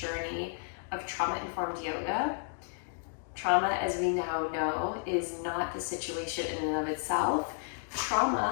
of trauma-informed yoga. Trauma, as we now know, is not the situation in and of itself.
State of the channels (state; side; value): silent; right; digital silence